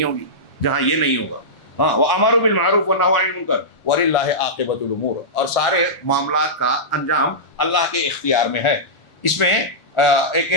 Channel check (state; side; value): late; right; 1.4 ms